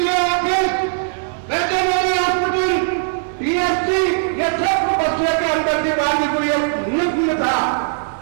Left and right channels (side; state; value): left; silent; 55 dB below the other